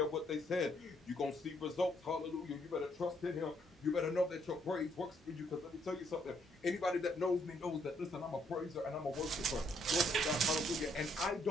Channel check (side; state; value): both; normal; correlation 0.70